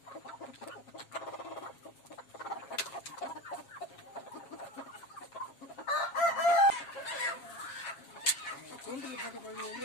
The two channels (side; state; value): right; late; 7.3 ms